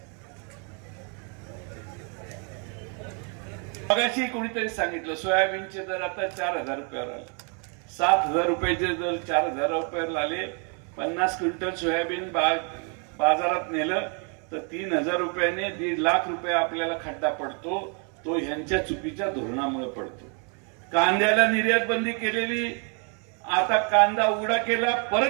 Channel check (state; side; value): quieter; left; 38.0 dB